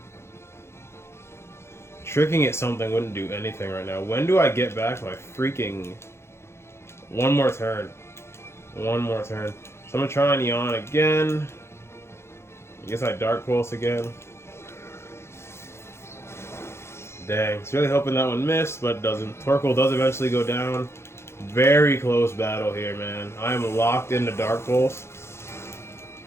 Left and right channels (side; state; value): right; late; 0.13 ms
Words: Tricking at something wouldn't do anything right now. When do I get back my freaking... One more turn. One more turn. So I'm gonna try and yawn again. I guess I Dark Pulse again. Dang. It's really hoping that one missed, but it doesn't. Torkoal does eventually go down. Very close battle here, man. I am locked into Dark Pulse.